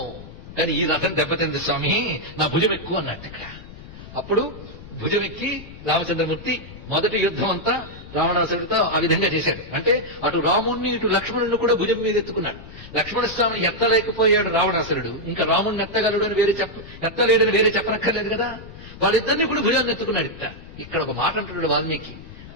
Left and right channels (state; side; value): noise; left; rumble, 16 dB below the sound